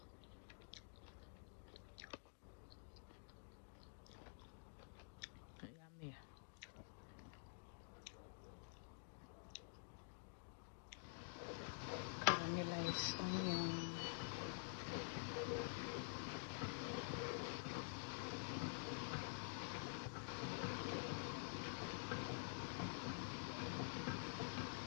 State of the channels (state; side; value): silent; right; digital silence